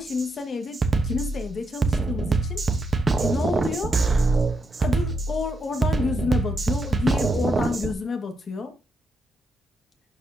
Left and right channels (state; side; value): normal; both; correlation 0.81